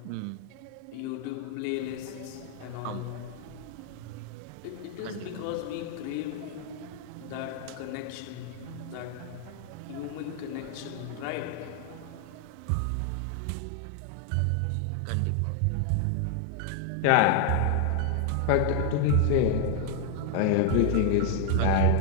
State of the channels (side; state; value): both; different; correlation 0.00